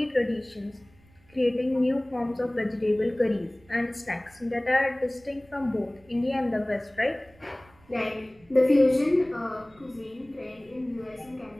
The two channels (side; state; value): right; noise; rumble, 29 dB below the sound